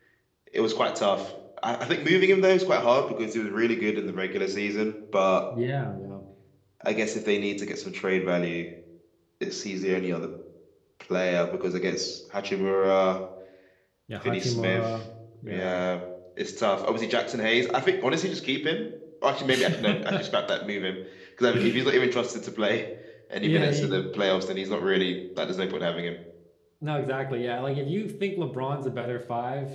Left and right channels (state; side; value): identical; both; correlation 1.00